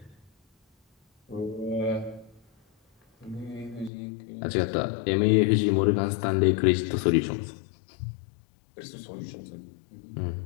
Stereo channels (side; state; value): right; drops out; at 3.9 s